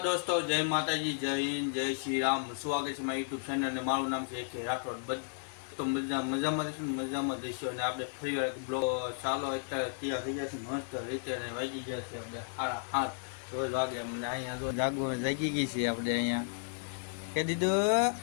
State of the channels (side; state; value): right; silent; 55 dB below the other